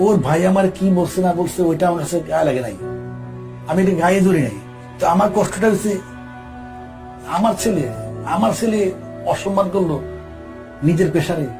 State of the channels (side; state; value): both; identical; correlation 1.00